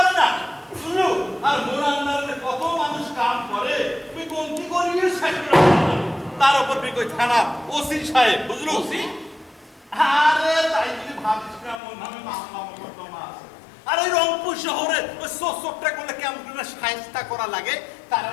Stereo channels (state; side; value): drops out; right; at 11.8 s